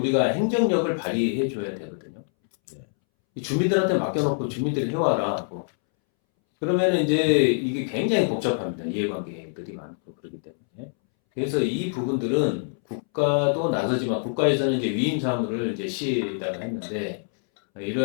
행정력을 발휘해 줘야 되거든요. 이 주민들한테 맡겨놓고 주민들이 해와라 하고 그러면은 이제 이게 굉장히 복잡합니다. 이해관계들이 많고 그렇기 때문에. 그래서 이 부분들은 국가도 나서지만 국가에서는 이제 위임 사무를 이제 시에다가 했는데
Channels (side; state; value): right; silent; 62 dB below the other